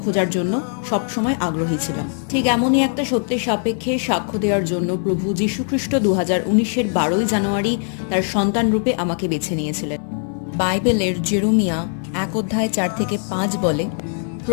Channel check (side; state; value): right; silent; 55 dB below the other